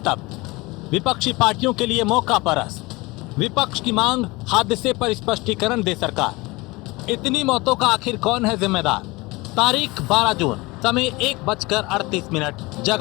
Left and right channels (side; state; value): right; quieter; 23.0 dB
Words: विपक्षी पार्टियों के लिए मौका परस्त। विपक्ष की मांग, हादसे पर स्पष्टीकरण दे सरकार। इतनी मौतों का आखिर कौन है जिम्मेदार? तारीख 12 जून, समय 1:38,